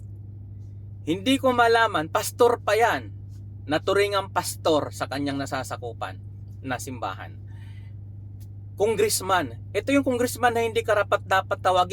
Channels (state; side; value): identical; both; correlation 1.00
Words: Hindi ko malaman, pastor pa yan, naturingang pastor sa kanyang nasasakupan na simbahan. Congressman. Ito yung congressman na hindi karapat dapat